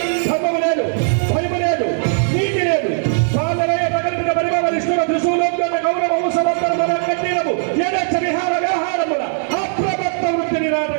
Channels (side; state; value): left; silent; digital silence